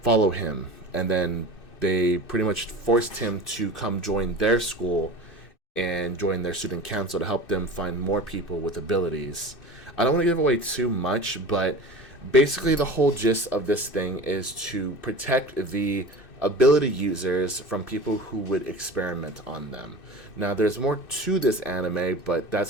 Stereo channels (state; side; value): late; right; 2.6 ms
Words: him, and then they pretty much forced him to come join their school and join their student council to help them find more people with abilities. I don't want to give away too much, but basically the whole gist of this thing is to protect the ability users from people who would experiment on them. Now, there's more to this anime, but